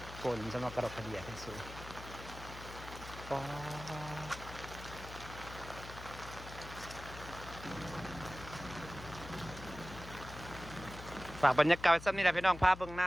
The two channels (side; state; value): left; noise; hum, 13 dB below the sound